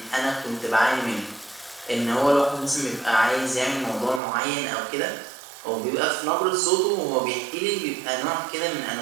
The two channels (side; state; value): left; drops out; at 4.2 s